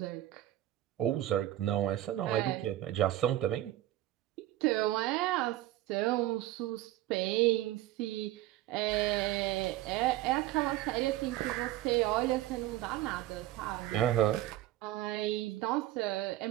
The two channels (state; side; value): quieter; left; 14.7 dB